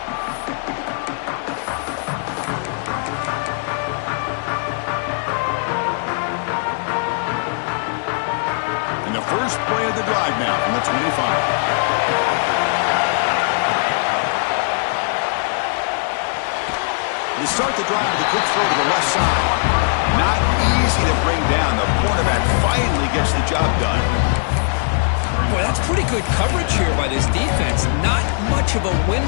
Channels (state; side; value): silent; right; digital silence